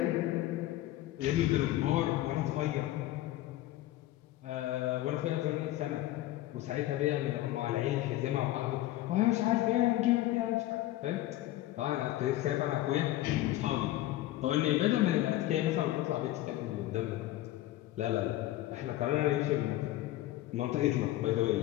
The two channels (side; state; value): right; quieter; 15.3 dB